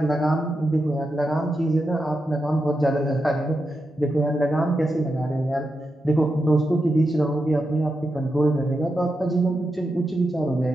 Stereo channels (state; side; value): normal; both; correlation 0.87